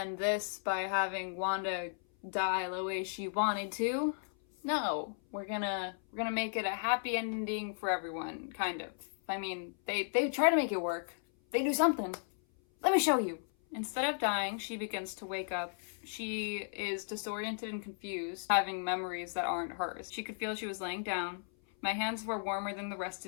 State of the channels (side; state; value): right; silent; 54 dB below the other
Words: this by having Wanda die the way she wanted to. No, we're gonna make it a happy ending for everyone, kind of. I mean, they try to make it work. They do something. Let me show you. Instead of dying, she begins to wake up. She is disoriented and confused, having memories that aren't hers. She could feel she was laying down. My hands were warmer than the rest